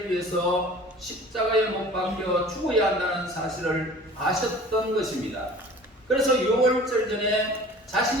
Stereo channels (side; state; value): both; normal; correlation 0.45